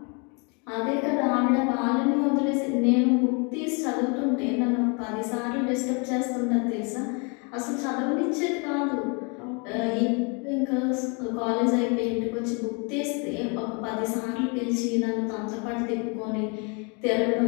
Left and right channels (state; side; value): quieter; right; 33.5 dB